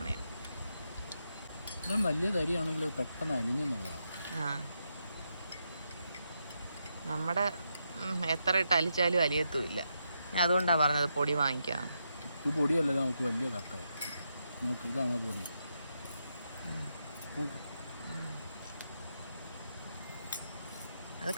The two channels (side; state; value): both; inverted; correlation -0.83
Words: വലിയ തരിയാണെങ്കിലും പെട്ടെന്ന് അലിഞ്ഞെന്നുള്ളതാണ്. നമ്മുടെ എത്ര ഇട്ട് അലിച്ചാലും അലിയത്തുമില്ല. അതുകൊണ്ടാണ് പറഞ്ഞത് പൊടി വാങ്ങിക്കാം. ഇത് പൊടിയല്ല, നമുക്ക് വലിയ കട്ടയായി. നോക്ക്, ഇതാണ് പൊടി. അത്